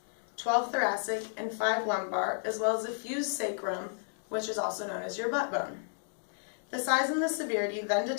12 thoracic, and 5 lumbar, as well as a fused sacrum, which is also known as your butt bone. The size and the severity then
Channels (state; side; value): silent; right; digital silence